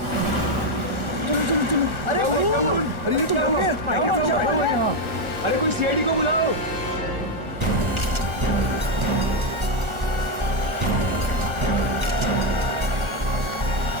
चलो चलो चलो। अरे खून! अरे ये तो क्या हुआ? यहाँ। अरे कोई सीआईडी को बुलाओ।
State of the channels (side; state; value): left; late; 1.4 ms